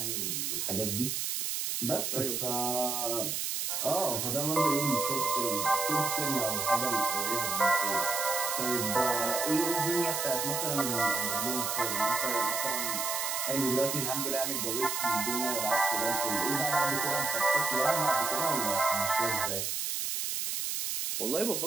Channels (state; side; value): noise; right; hiss, 1 dB below the sound